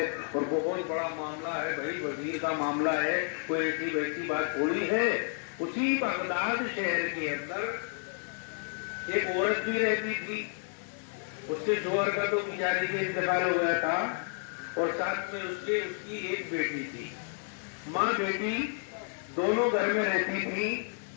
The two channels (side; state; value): right; silent; 57 dB below the other